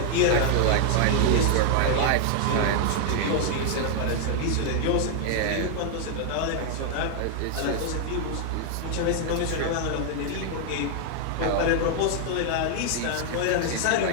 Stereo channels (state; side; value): different; both; correlation 0.00